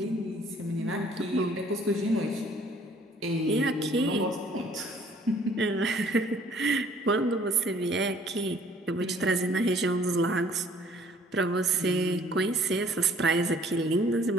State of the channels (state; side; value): normal; both; correlation 0.57